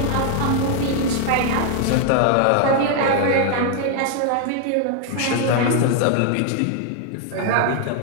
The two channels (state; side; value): different; both; correlation 0.00